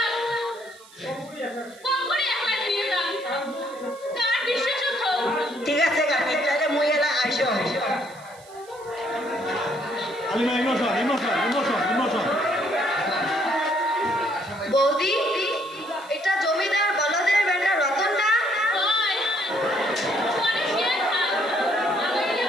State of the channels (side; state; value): right; noise; hiss, 24 dB below the sound